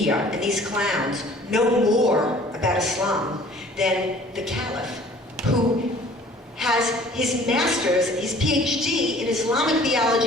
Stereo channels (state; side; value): normal; both; correlation 0.52